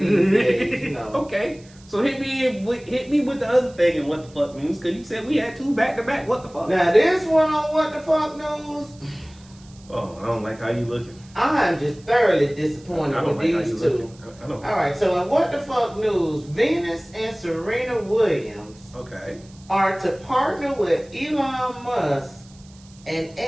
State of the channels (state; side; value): noise; right; hiss, 26 dB below the sound